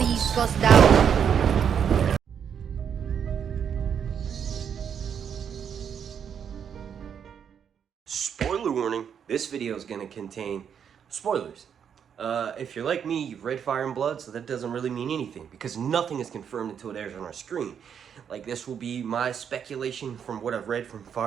gosdau. Spoiler warning, this video is going to contain spoilers. If you're like me, you've read Fire and Blood, so that doesn't really mean anything, because nothing is confirmed until it airs on our screen. Like, this will be my speculation from what I've read from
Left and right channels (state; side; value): quieter; left; 7.9 dB